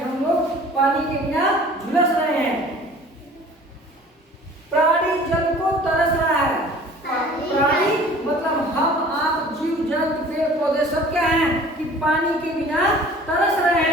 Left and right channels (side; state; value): both; normal; correlation 0.47